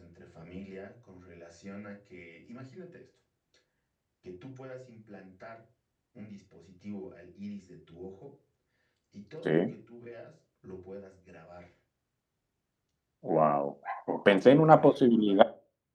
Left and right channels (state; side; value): identical; both; correlation 1.00